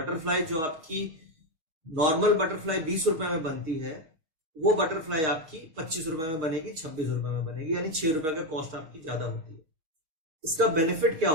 जो आपकी नॉर्मल बटरफ्लाई 20 रुपए में बनती है वो बटरफ्लाई आपकी 25 रुपए में बनेगी, 26 रुपए में बनेगी, यानी 6 रुपए का कॉस्ट आपकी ज्यादा होती है। इसका बेनिफिट क्या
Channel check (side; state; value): left; late; 6.4 ms